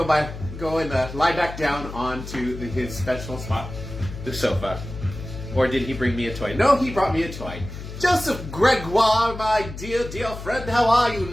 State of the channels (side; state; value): left; noise; hum, 11 dB below the sound